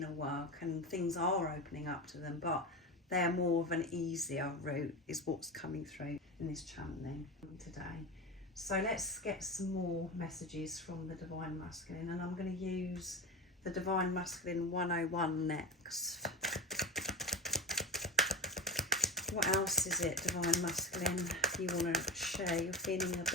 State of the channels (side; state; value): both; normal; correlation 0.25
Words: work and things are opening up to them, but they're more of an easier route is what's coming through in this channeling today. So let's get some more messages from the divine masculine, and I'm going to use the divine masculine 101 next. What else is it, divine masculine, you want to share? You're feeling a